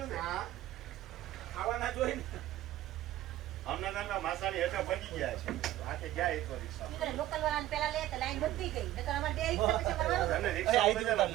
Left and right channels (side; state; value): left; quieter; 14.2 dB